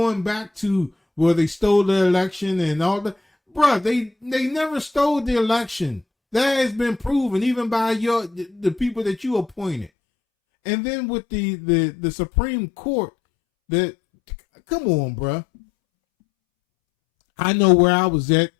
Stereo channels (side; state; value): right; drops out; at 9.9 s